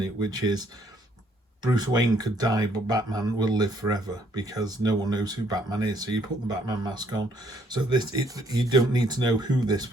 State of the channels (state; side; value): normal; both; correlation 0.67